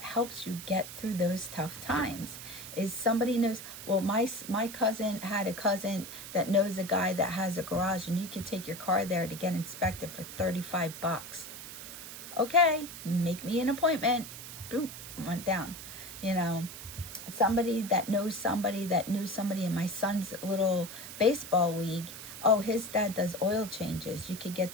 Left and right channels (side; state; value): right; noise; hiss, 11 dB below the sound